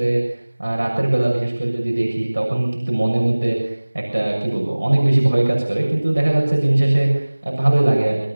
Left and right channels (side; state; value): both; inverted; correlation -1.00